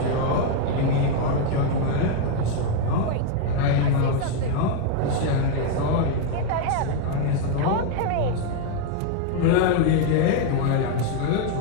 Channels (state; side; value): different; both; correlation 0.01